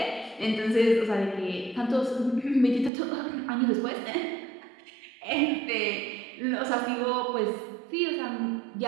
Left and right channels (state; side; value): drops out; left; at 2.9 s